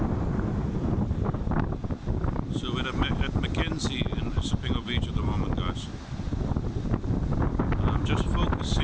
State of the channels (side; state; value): both; identical; correlation 1.00